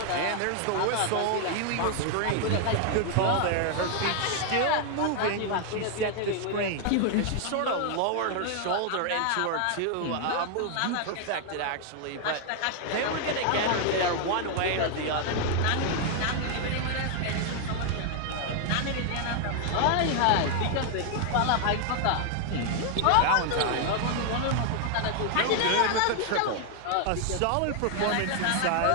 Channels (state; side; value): different; both; correlation 0.00